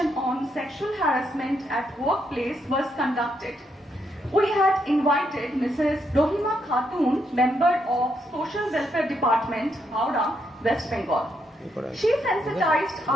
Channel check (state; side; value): normal; both; correlation 0.78